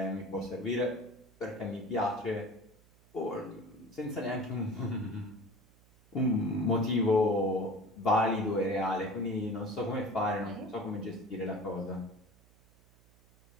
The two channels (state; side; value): noise; right; hum, 29 dB below the sound